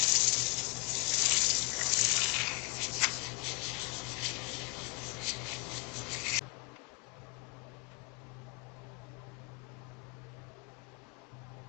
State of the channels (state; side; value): quieter; right; 32.7 dB